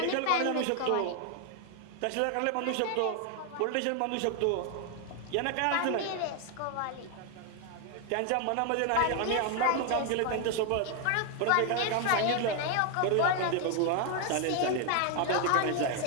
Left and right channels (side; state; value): both; different; correlation 0.01